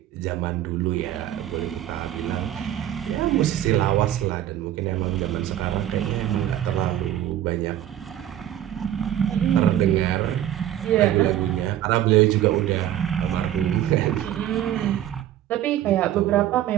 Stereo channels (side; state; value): left; quieter; 12.0 dB